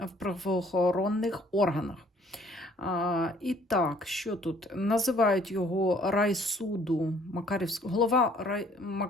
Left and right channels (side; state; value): both; normal; correlation 0.59